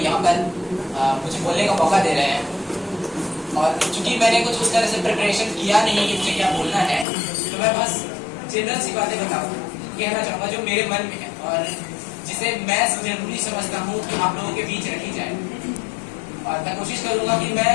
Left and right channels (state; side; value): drops out; right; at 7.1 s